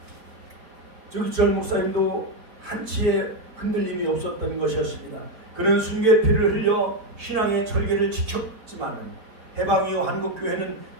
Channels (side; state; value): left; late; 4.5 ms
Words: 주기철 목사님도 한치의 흔들림이 없었던 것이었습니다. 그는 순교의 피를 흘려 신앙의 절개를 지켰지만 해방 이후 한국교회는